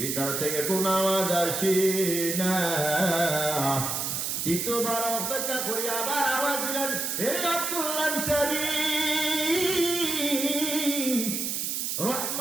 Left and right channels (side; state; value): right; noise; hiss, 1 dB below the sound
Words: থেকে কোনো আওয়াজ আসে না। তৃতীয়বার অপেক্ষা করে আবার আওয়াজ দিলেন, এরে আব্দুল্লাহ আনসারী,